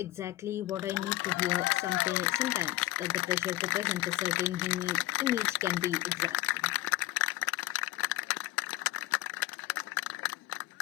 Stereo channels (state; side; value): quieter; right; 17.6 dB